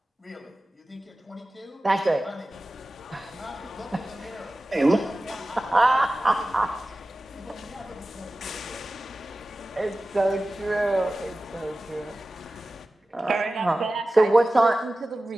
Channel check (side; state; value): both; normal; correlation 0.96